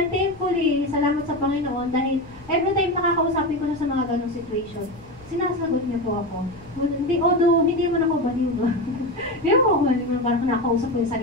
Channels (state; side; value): noise; left; rumble, 23 dB below the sound